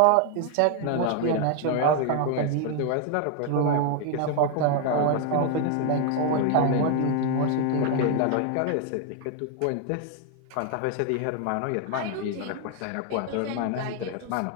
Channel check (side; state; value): both; different; correlation 0.01